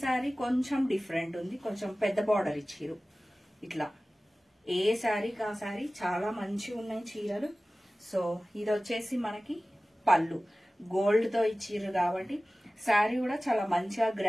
శారీ కొంచెం డిఫరెంట్ ఉంది, కొంచెం పెద్ద బార్డర్ ఇచ్చిరు. ఇట్లా ఏ శారీకి ఆ శారీ చాలా మంచిగా ఉన్నాయి చీరలు. సో ఇది వచ్చేసి మనకి పళ్ళు గోల్డ్ తో ఇచ్చిర్రు కాబట్టి శారీ కూడా చాలా మంచిగా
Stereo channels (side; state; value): both; normal; correlation 0.97